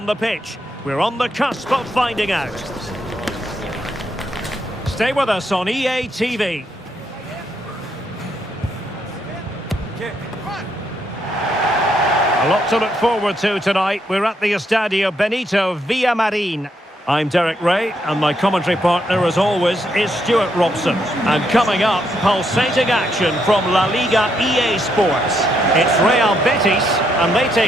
the pitch? We're on the cusp of finding out. Stay with us on EA TV. A lot to look forward to tonight. We're at the Estadio Benito Villamarin. I'm Derek Ray, and my commentary partner, as always, is Stuart Robson. And coming up, pulsating action from La Liga EA Sports. It's Real Betis, and they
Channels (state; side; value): normal; both; correlation 0.76